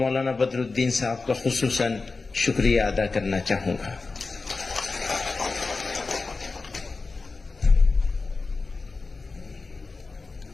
बदरुद्दीन साहब का खुसूसन शुक्रिया अदा करना चाहूंगा।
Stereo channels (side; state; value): right; quieter; 4.0 dB